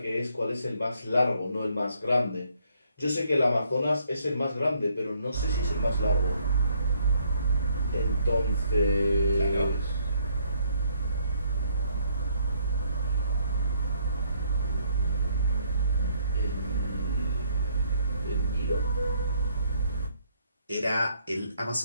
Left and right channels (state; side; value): inverted; both; correlation -0.68